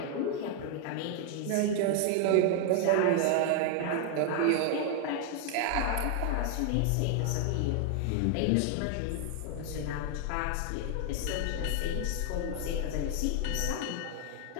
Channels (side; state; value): both; different; correlation 0.00